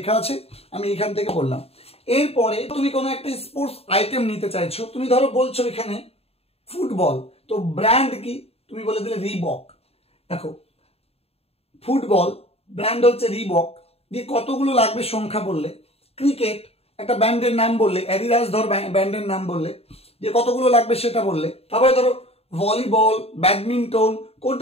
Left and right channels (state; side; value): late; right; 0.29 ms